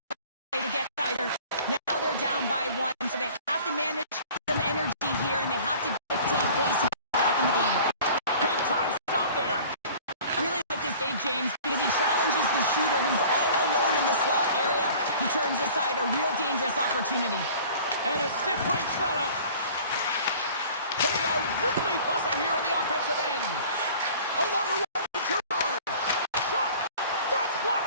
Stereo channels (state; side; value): inverted; both; correlation -0.46